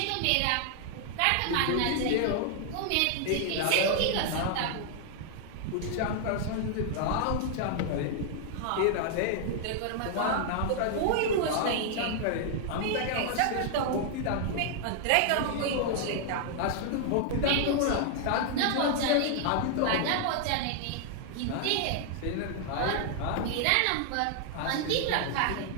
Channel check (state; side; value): different; both; correlation -0.01